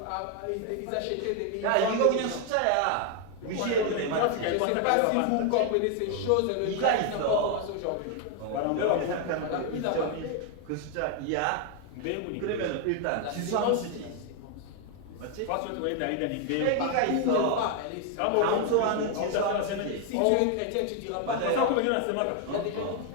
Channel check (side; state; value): both; different; correlation 0.00